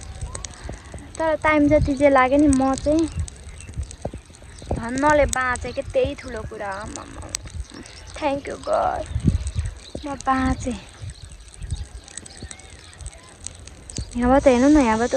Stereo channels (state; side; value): identical; both; correlation 1.00